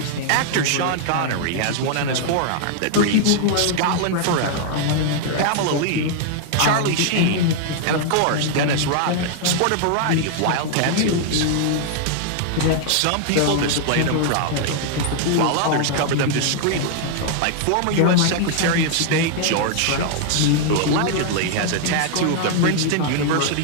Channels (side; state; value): both; different; correlation 0.00